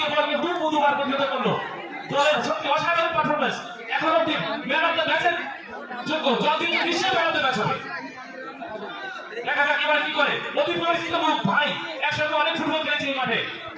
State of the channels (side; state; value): both; identical; correlation 1.00